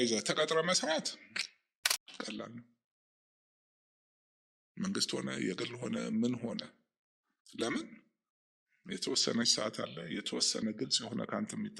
ተቀጥረ መስራት ቀላል ነው። መንግስት ሆነ የግል ሆነ ምን ሆነ ለምን የተወሰነች ሰዓት አለ፣ የተወሰነ ግልጽ የሆነ ካንተ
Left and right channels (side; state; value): both; identical; correlation 1.00